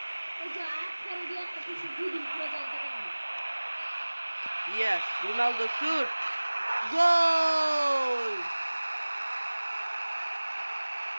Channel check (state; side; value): inverted; both; correlation -1.00